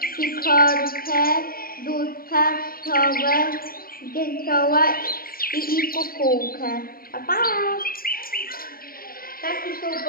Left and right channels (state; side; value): late; right; 0.42 ms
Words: sikorkę, dudka, sowę, dzięcioła i kukułkę. Pa, pa! Ptaki są